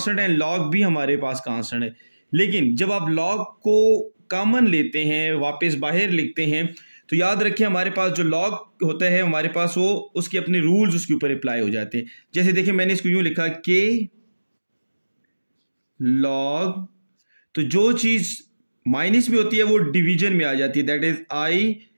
है, लॉग भी हमारे पास कांस्टेंट है. लेकिन जब आप लॉग को कॉमन लेते हैं, वापस बाहर लिखते हैं, तो याद रखिए हमारे पास जो लॉग होता है हमारे पास वो उसके अपने रूल्स उसके ऊपर अप्लाई हो जाते हैं. जैसे देखिए मैंने इसको यूं लिखा के लॉग, तो जो चीज माइनस में होती है वो डिवीजन में आ जाती है, that is I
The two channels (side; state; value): both; inverted; correlation -1.00